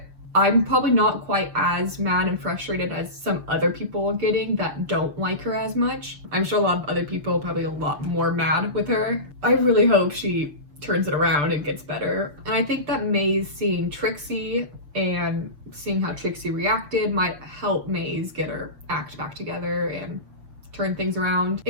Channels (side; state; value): left; late; 6.7 ms